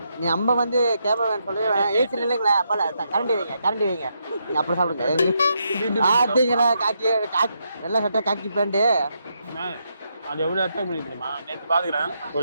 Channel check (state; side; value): inverted; both; correlation -0.80